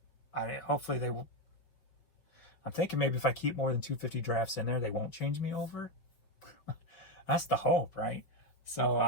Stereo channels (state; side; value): late; right; 6.1 ms